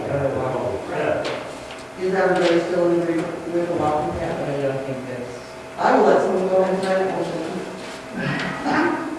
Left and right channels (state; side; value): identical; both; correlation 1.00